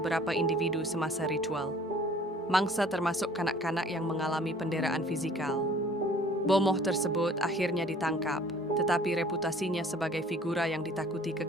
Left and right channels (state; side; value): normal; both; correlation 0.53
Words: individu semasa ritual. Mangsa termasuk kanak-kanak yang mengalami penderitaan fizikal. Bomoh tersebut akhirnya ditangkap, tetapi reputasinya sebagai figura yang ditakuti